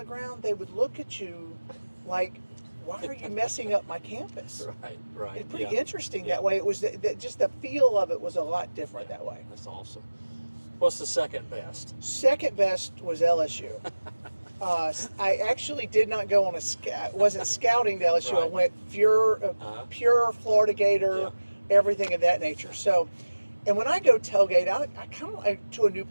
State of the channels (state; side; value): inverted; both; correlation -1.00